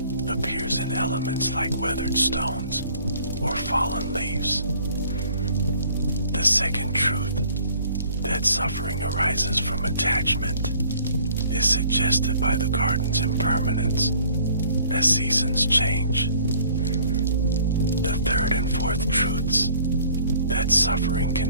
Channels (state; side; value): inverted; both; correlation -0.56